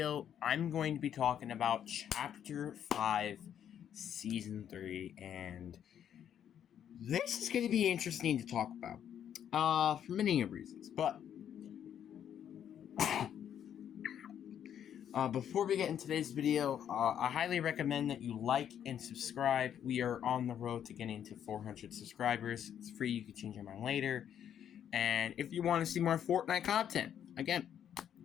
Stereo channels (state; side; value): quieter; right; 9.4 dB